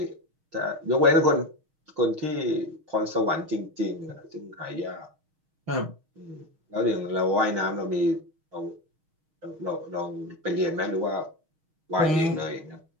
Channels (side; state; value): left; late; 6.4 ms